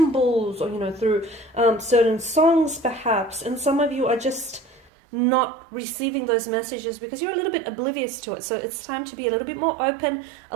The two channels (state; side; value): drops out; left; at 4.9 s